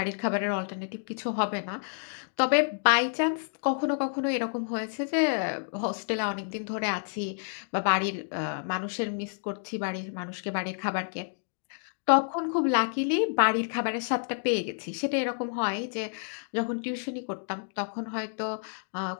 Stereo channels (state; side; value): silent; right; digital silence